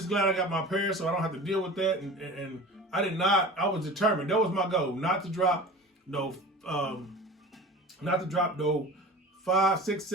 glad I got my pair so I don't have to deal with that. And I was determined. That was my goal, not to drop no $500,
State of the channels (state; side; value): normal; both; correlation 0.37